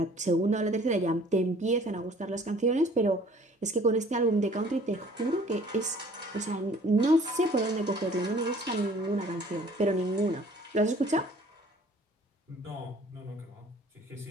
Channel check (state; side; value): normal; both; correlation 0.53